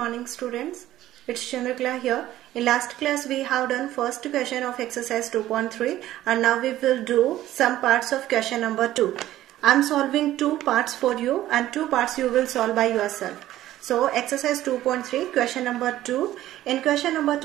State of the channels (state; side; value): quieter; left; 14.1 dB